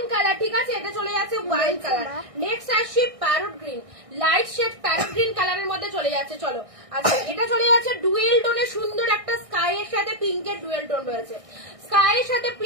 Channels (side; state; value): left; late; 1.6 ms